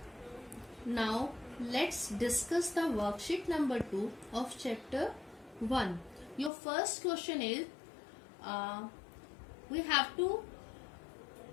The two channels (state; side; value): drops out; right; at 6.5 s